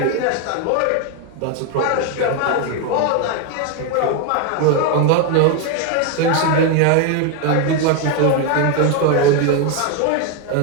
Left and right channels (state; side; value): different; both; correlation 0.01